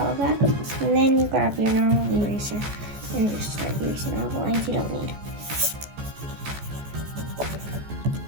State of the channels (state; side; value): late; left; 14 ms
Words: of that. And then you grab your normal eraser and just start erasing all the lines you don't need.